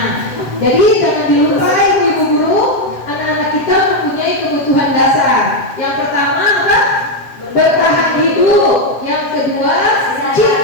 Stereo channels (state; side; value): late; right; 7.6 ms